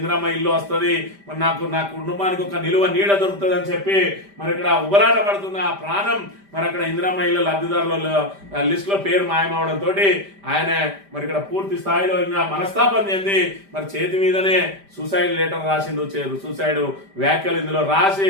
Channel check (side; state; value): left; late; 5.0 ms